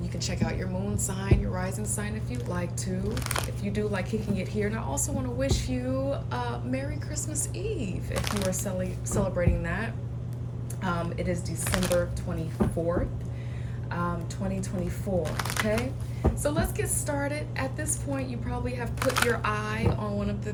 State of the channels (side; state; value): both; identical; correlation 1.00